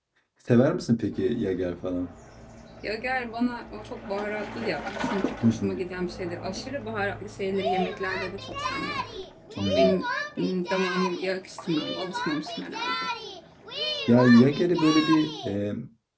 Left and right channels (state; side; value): identical; both; correlation 1.00